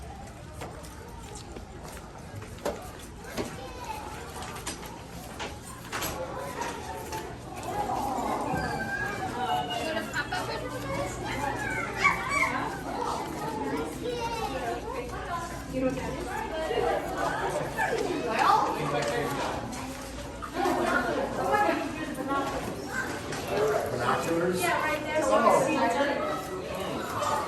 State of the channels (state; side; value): identical; both; correlation 1.00